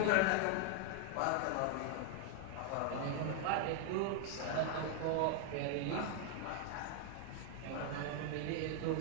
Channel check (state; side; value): different; both; correlation 0.00